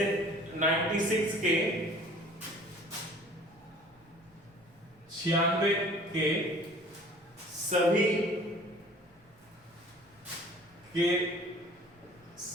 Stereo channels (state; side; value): normal; both; correlation 0.49